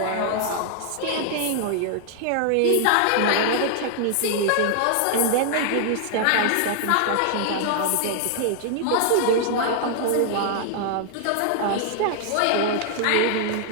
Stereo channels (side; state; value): both; different; correlation -0.01